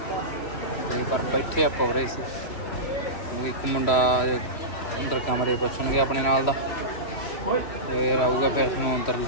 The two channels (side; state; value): right; late; 3.1 ms